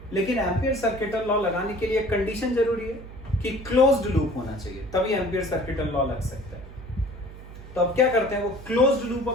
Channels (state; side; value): noise; right; hum, 15 dB below the sound